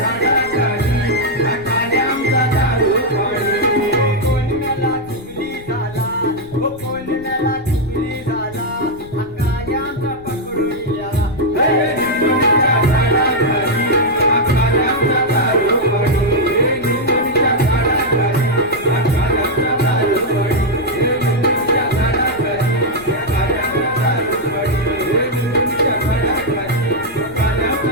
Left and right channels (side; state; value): left; noise; rumble, 20 dB below the sound